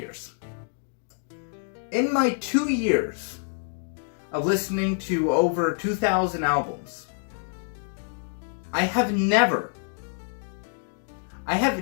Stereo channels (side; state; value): right; silent; digital silence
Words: In my 2 years of listening to over 2,000 albums, I have never